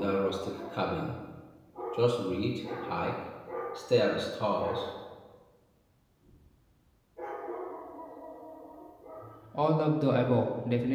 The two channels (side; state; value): both; identical; correlation 1.00